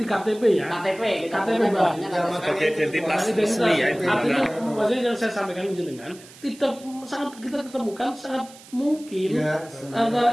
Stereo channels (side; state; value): right; noise; hiss, 21 dB below the sound